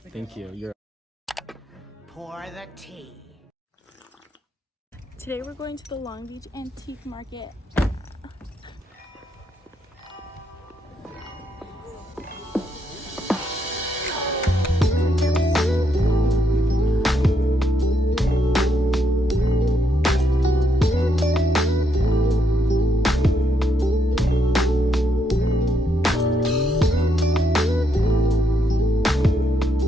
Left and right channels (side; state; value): both; normal; correlation 0.77